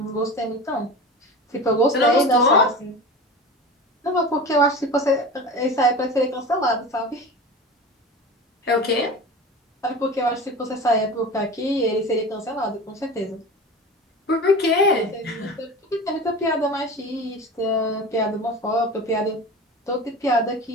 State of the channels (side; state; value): both; normal; correlation 0.32